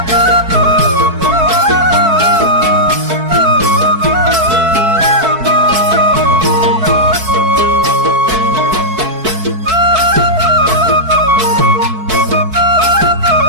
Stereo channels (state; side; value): late; left; 4.6 ms